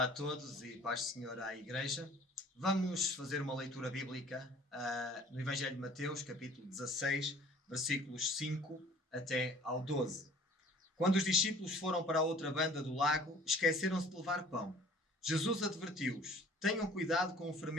a todos e paz do Senhor à Igreja. Vamos fazer uma leitura bíblica no Evangelho de Mateus, capítulo 16, versículos 5 até ao 12. Quando os discípulos foram para a outra banda do lago, esqueceram-se de levar pão. Jesus advertiu-os: tenham cuidado com o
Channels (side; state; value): both; normal; correlation 0.51